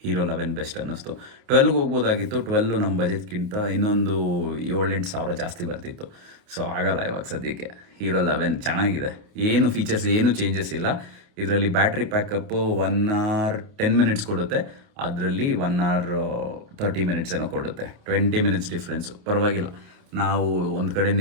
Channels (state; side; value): late; left; 28 ms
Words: ಹೀರೋ 11 ಬೆಸ್ಟ್ ಅನ್ನಿಸ್ತು. 12ಗೆ ಹೋಗ್ಬೋದಾಗಿತ್ತು. 12 ನಮ್ಮ ಬಜೆಟ್ಗಿಂತ ಇನ್ನೊಂದು 7-8 ಸಾವಿರ ಜಾಸ್ತಿ ಬರ್ತಿತ್ತು. ಸೊ ಆಗಲ್ಲ ಇವಾಗ ಸದ್ಯಕ್ಕೆ. ಹೀರೋ 11 ಚೆನ್ನಾಗಿದೆ, ಏನು ಫೀಚರ್ಸ್ ಏನು ಚೇಂಜಸ್ ಇಲ್ಲ. ಇದರಲ್ಲಿ ಬ್ಯಾಟ್ರಿ ಪ್ಯಾಕಪ್ಪು 1 hour 10 minutes ಕೊಡುತ್ತೆ, ಅದರಲ್ಲಿ 1 hour 30 minutes ಏನೋ ಕೊಡುತ್ತೆ. 20 minutes ಡಿಫ್ರೆನ್ಸು, ಪರವಾಗಿಲ್ಲ. ನಾವು ಒಂದು ಕಡೆ